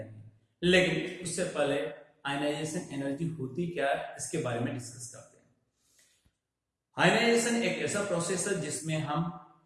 लेकिन उससे पहले आयनाइजेशन एनर्जी होती क्या है, इसके बारे में डिस्कस करते हैं। आयनाइजेशन एक ऐसा प्रोसेस है जिसमें हम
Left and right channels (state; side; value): identical; both; correlation 1.00